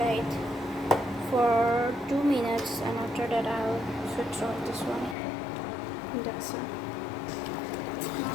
for 2 minutes, and after that I'll switch off this one. That's it.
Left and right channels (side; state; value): right; drops out; at 5.2 s